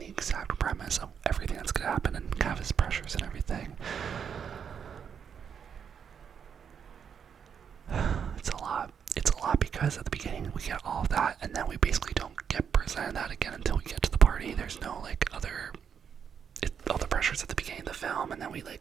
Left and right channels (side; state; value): left; quieter; 7.4 dB